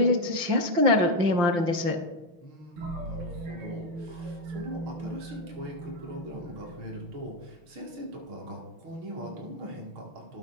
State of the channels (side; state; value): left; late; 5.8 ms